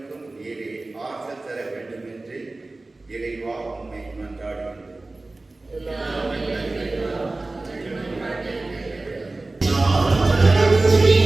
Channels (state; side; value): quieter; left; 3.1 dB